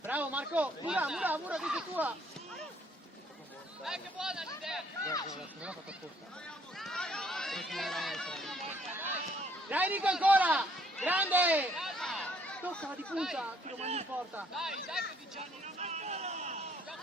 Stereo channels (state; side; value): normal; both; correlation 0.65